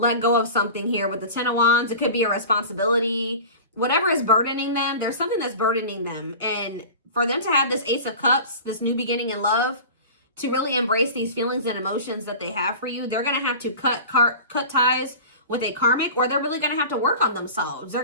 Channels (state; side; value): inverted; both; correlation -0.36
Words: go of something here. With the Ten of Wands, it could be a responsibility. Whatever is burdening them, there's something that's burdening them. And for them to have this Ace of Cups, this new beginning in love, to really embrace these feelings and emotions that they have for you, they're going to have to cut ties with a karmic, or they're really going to have to work on themselves. They're